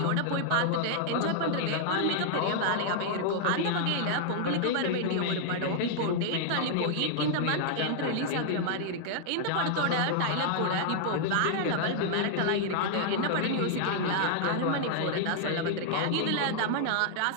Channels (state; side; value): different; both; correlation -0.01